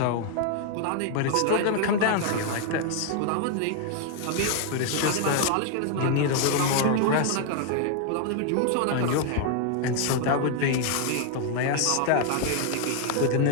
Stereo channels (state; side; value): different; both; correlation 0.00